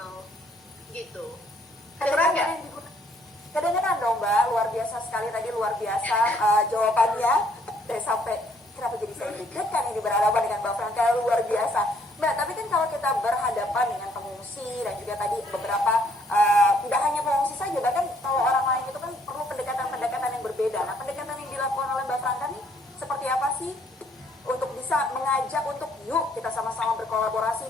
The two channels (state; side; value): normal; both; correlation 0.66